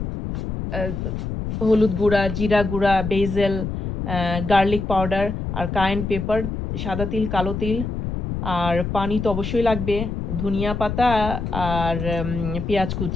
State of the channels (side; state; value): left; noise; rumble, 4 dB below the sound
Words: হলুদ গুঁড়া, জিরা গুঁড়া, বেজেল, গার্লিক পাউডার আর কায়েন পেপার, সাদা তিল, কালো তিল, আর পানি তো অবশ্যই লাগবে, ধনিয়া পাতা আর পেঁয়াজ